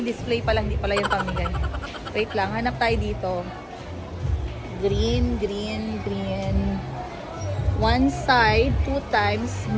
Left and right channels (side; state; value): both; identical; correlation 1.00